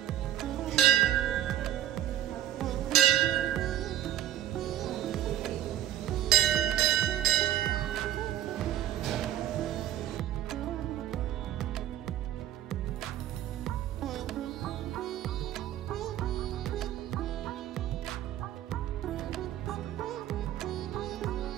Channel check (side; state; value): left; quieter; 11.9 dB